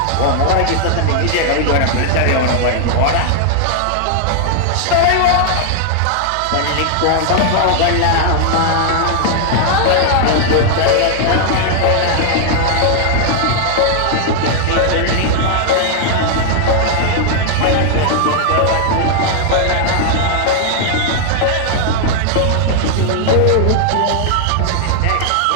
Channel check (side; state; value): both; different; correlation 0.00